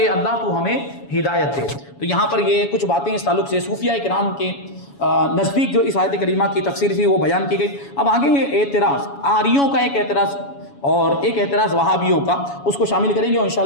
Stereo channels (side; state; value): right; late; 7.1 ms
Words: اللہ تو ہمیں ہدایت دے. تو یہاں پر یہ کچھ باتیں اس تعلق سے صوفیاء کرام کے نزدیک جو اس آیت کریمہ کی تفسیر تھی وہ بیان کی گئی. اب آگے یہ اعتراض, آریوں کا ایک اعتراض اور ایک اعتراض وہابیوں کا، اس کو شامل کریں گے، اور